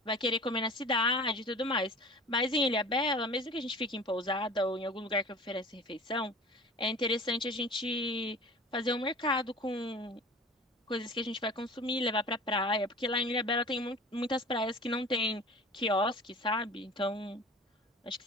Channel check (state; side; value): normal; both; correlation 0.40